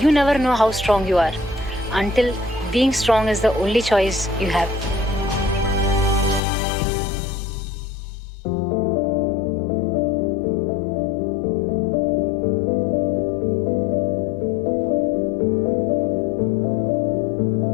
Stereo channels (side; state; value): right; drops out; at 6.4 s